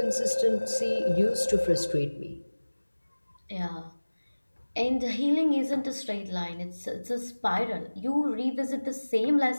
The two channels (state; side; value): inverted; both; correlation -1.00